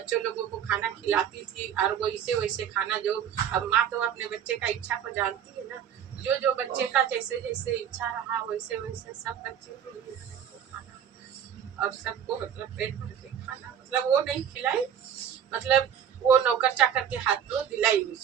लोगों को खाना खिलाती थी। और वैसे वैसे खाना जो अब माँ तो अपने बच्चे का इच्छा को जानती है ना, जो जो बच्चे का जैसे जैसे इच्छा रहा वैसे वैसे सब बच्चे के लिए खाना और सबको मतलब पेट भर के खाना, मतलब वो नहीं खिलाई, मतलब वो नौकर चाकर के हाथ में दिलाई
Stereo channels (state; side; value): quieter; left; 8.9 dB